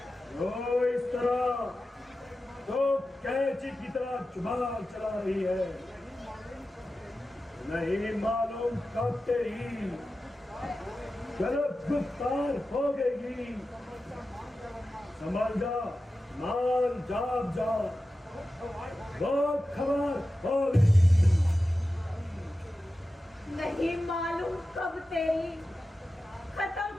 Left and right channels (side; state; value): both; normal; correlation 0.93